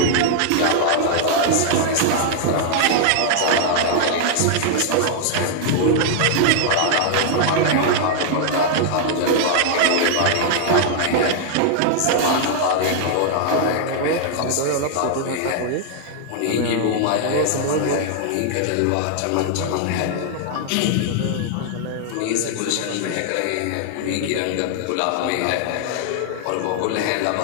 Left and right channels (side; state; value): both; different; correlation -0.01